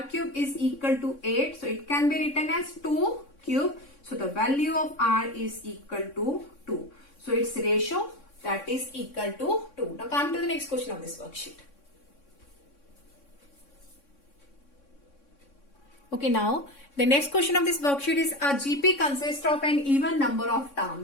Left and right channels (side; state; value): right; late; 3.6 ms